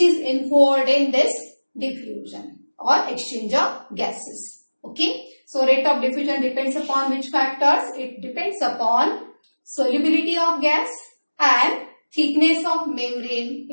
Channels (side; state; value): both; inverted; correlation -1.00